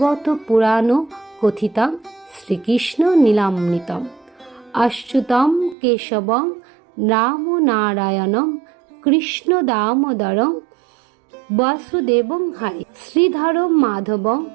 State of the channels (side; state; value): left; drops out; at 5.8 s